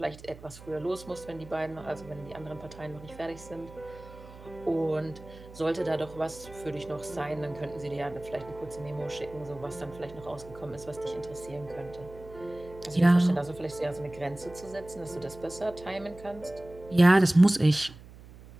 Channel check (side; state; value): right; noise; hum, 18 dB below the sound